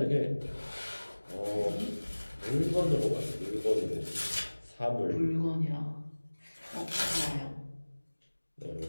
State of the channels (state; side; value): inverted; both; correlation -1.00